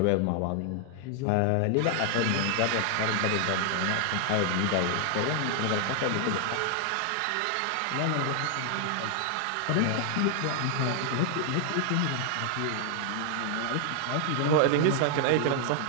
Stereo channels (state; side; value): different; both; correlation 0.00